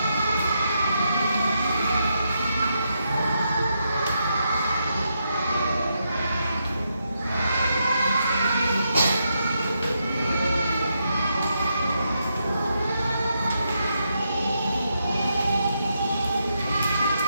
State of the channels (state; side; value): inverted; both; correlation -0.82